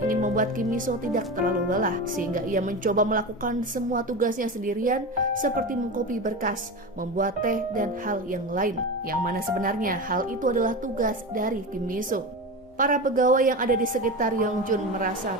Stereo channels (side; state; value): both; normal; correlation 0.24